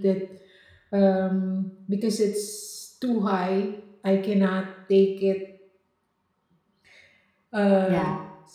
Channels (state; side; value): identical; both; correlation 1.00